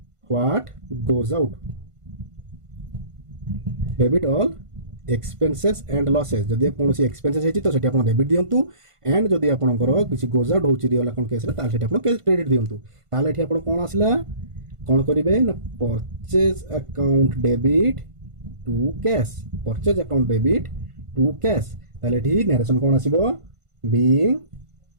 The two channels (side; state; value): left; late; 1.5 ms